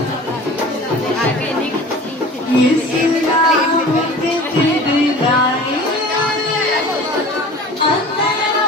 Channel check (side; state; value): both; normal; correlation 0.41